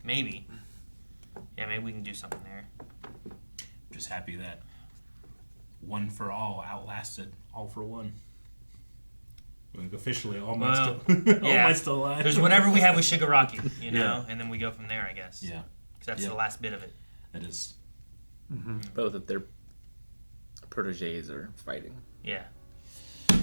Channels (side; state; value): both; inverted; correlation -1.00